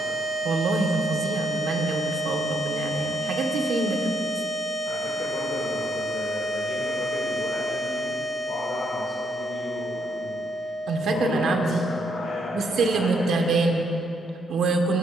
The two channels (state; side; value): normal; both; correlation 0.74